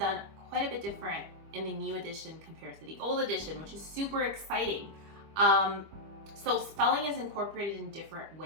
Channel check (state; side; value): late; left; 25 ms